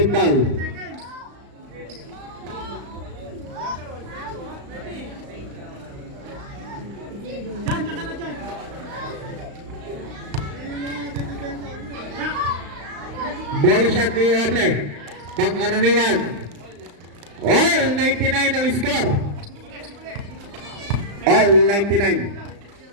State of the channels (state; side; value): late; left; 35 ms